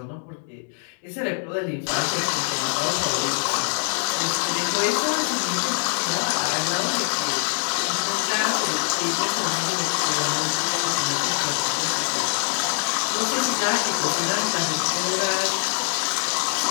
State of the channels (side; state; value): right; silent; 63 dB below the other